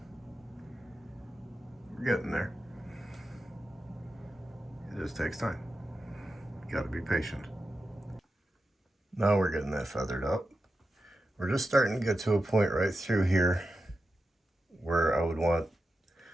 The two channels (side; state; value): both; normal; correlation 0.90